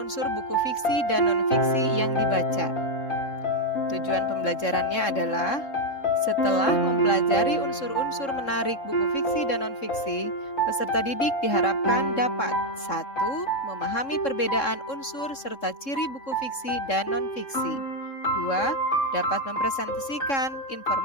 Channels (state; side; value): late; right; 3.7 ms